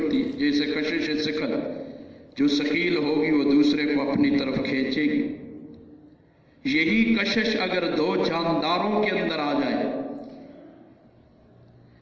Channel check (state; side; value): identical; both; correlation 1.00